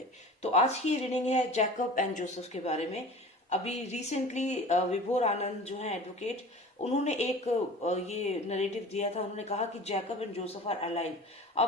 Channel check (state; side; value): normal; both; correlation 0.39